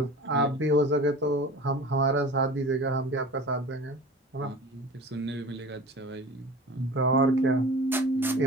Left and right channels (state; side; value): normal; both; correlation 0.38